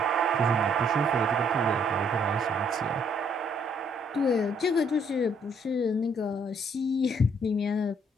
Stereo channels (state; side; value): normal; both; correlation 0.67